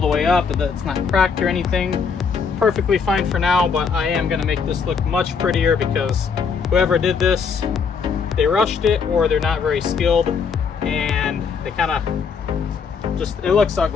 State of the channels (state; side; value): quieter; right; 5.9 dB